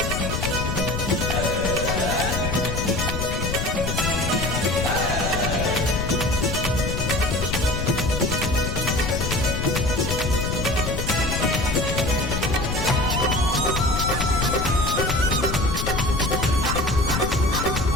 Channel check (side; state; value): left; noise; rumble, 2 dB below the sound